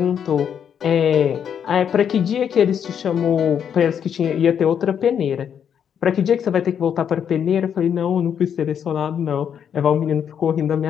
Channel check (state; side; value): quieter; right; 8.2 dB